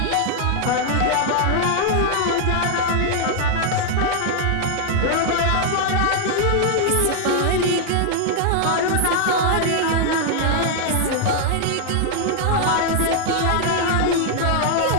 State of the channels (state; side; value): different; both; correlation 0.00